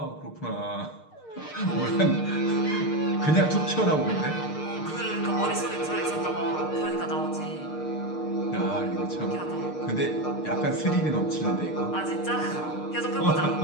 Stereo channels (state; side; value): late; right; 6.6 ms